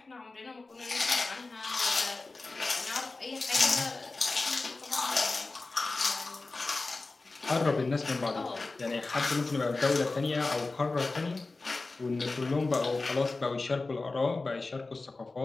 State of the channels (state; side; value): quieter; right; 3.5 dB